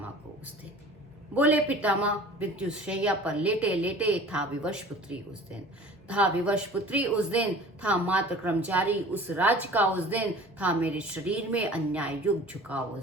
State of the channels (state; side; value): normal; both; correlation 0.44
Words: को उस दिन? बोले पितामह मृत्यु शैया पर लेटे लेटे, था विवश पुत्री उस दिन, था विवश पुत्री उस दिन, था मात्र कर्मचारी उस राज का उस दिन, था मेरे शरीर में अन्याय युग झुकाव